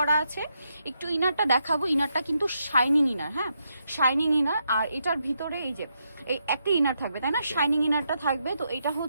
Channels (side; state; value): both; inverted; correlation -0.81